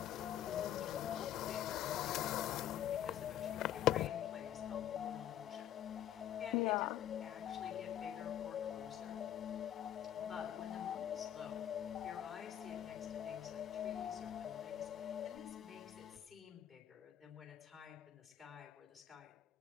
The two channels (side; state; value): right; quieter; 11.0 dB